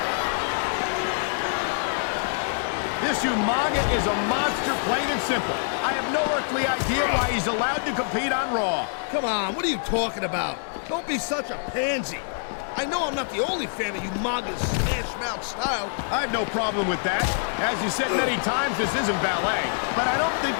This Umaga is a monster, plain and simple. I have no earthly idea why he's allowed to compete on Raw. Come on, what are you talking about? Don't be such a pansy. I know I'm not the only fan of Umaga's smash-mouth style. I have no problem with that. As you said many times, this isn't ballet. But I don't think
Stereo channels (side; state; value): right; silent; digital silence